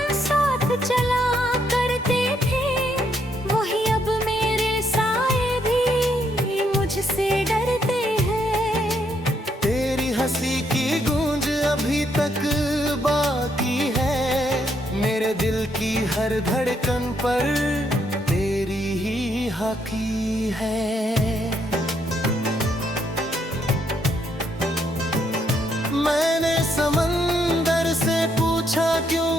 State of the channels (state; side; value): normal; both; correlation 0.74